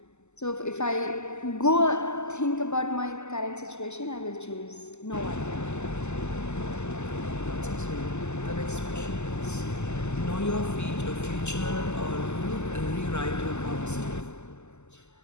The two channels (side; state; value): right; late; 0.83 ms